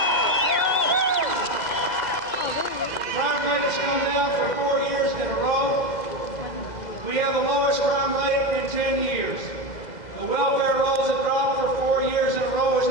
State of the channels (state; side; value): late; right; 2.0 ms